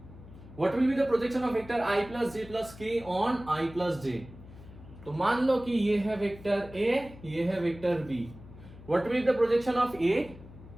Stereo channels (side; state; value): left; noise; hum, 18 dB below the sound